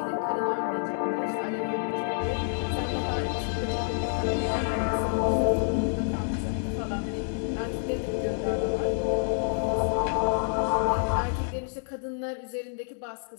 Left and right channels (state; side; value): silent; right; digital silence